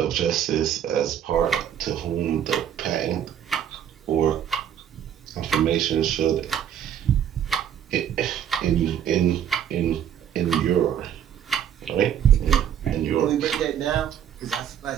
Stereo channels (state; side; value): quieter; left; 9.5 dB